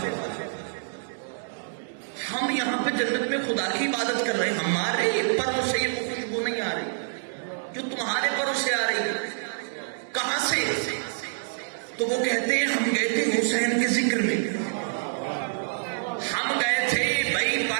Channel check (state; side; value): silent; left; digital silence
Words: ہم یہاں پہ جنت میں خدا کی عبادت کر رہے ہیں، ہمارے پروں سے یہ خوشبو نہیں آ رہی جو تمہارے پروں سے آ رہی ہے. کہاں سے؟ تو وہ کہتے ہیں ہم گئے تھے حسین کے ذکر میں. ہم گئے تھے بھائی